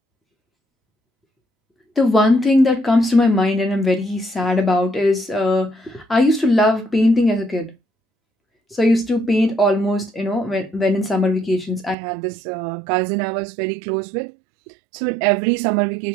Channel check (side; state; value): left; drops out; at 12.0 s